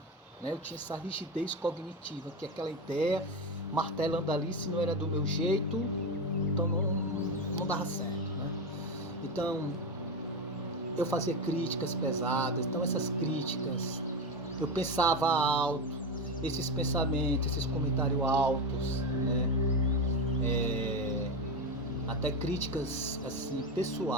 né? Eu tinha essa rigidez cognitiva, que é aquela ideia martelando ali, se não era do meu jeito, então não dava certo, né? Então eu fazia críticas pesadas, então essas críticas, eu pensava alto, esses pensamentos, esses comentários altos, né? Até críticas assim,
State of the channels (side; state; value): both; normal; correlation 0.16